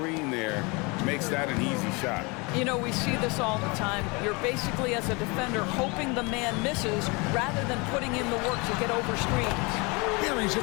there makes that an easy shot. You know, we see this all the time. You're basically, as a defender, hoping the man misses rather than putting in the work to get over screens. Buries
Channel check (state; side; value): quieter; right; 28.1 dB